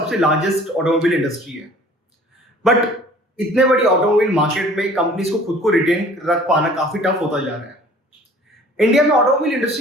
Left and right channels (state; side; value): normal; both; correlation 0.50